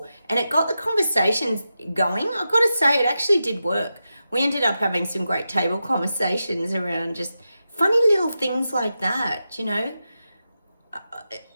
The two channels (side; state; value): both; inverted; correlation -0.90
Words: it got the conversations going. I've got to say, it actually did work. We ended up having some great table conversations around just funny little things like that.